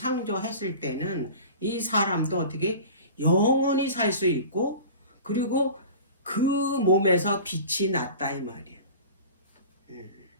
때는 이 사람도 어떻게 영원히 살 수 있고, 그리고 그 몸에서 빛이 났다 이 말이에요.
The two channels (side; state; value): both; inverted; correlation -0.38